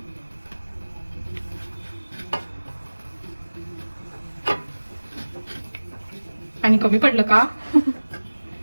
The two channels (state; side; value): inverted; both; correlation -1.00